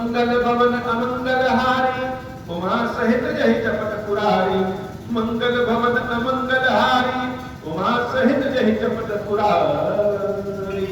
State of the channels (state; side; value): identical; both; correlation 1.00